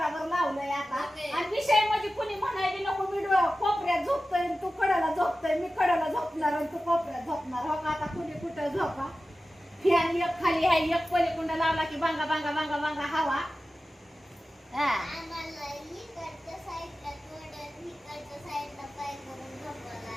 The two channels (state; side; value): normal; both; correlation 0.94